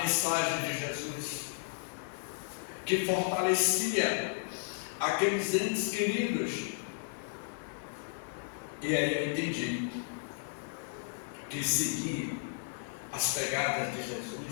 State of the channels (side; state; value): right; silent; digital silence